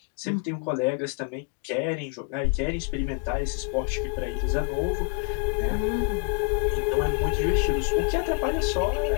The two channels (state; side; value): quieter; right; 37.1 dB